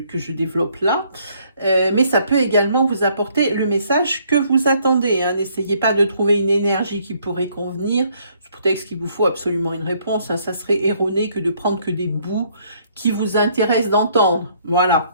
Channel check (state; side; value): inverted; both; correlation -0.66